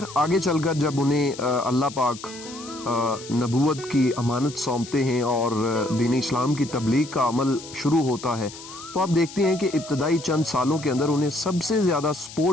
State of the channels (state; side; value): noise; left; hiss, 15 dB below the sound